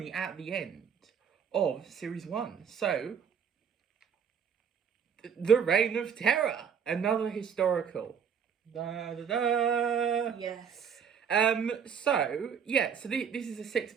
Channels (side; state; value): left; quieter; 7.3 dB